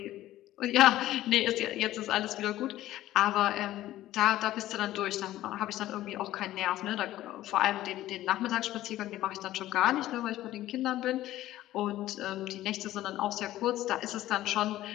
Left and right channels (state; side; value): quieter; right; 14.6 dB